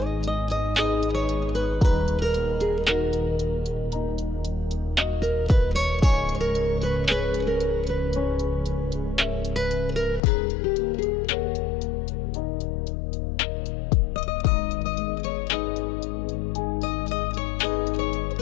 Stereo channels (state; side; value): drops out; right; at 10.2 s